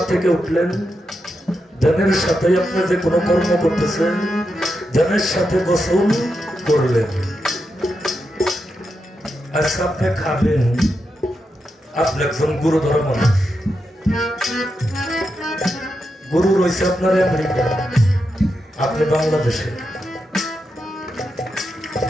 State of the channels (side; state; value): both; normal; correlation 0.86